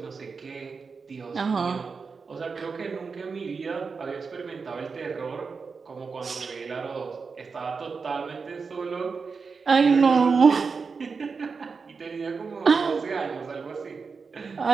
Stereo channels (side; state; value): left; quieter; 5.0 dB